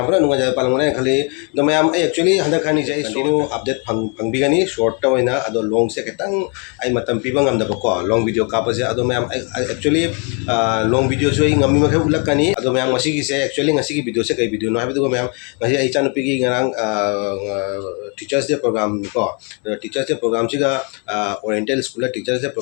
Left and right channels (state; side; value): quieter; right; 34.9 dB